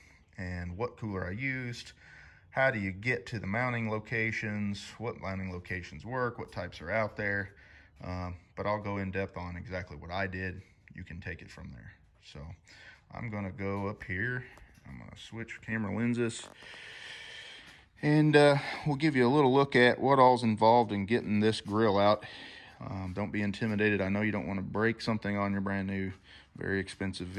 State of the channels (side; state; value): both; identical; correlation 1.00